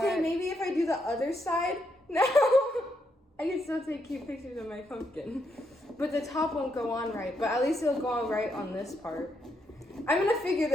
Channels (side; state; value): both; normal; correlation 0.79